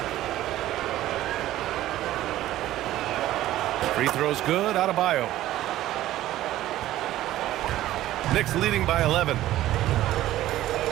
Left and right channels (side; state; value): left; quieter; 14.4 dB